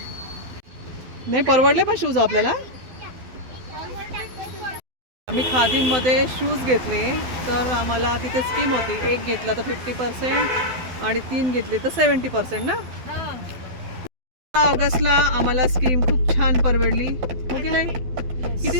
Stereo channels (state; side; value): late; left; 12 ms